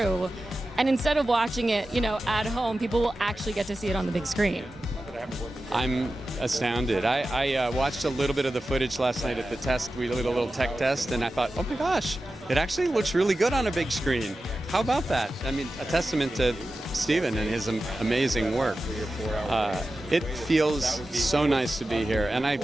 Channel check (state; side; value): normal; both; correlation 0.93